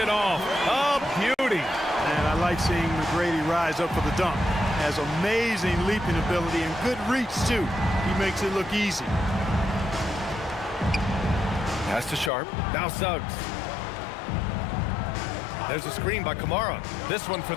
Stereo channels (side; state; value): right; drops out; at 12.3 s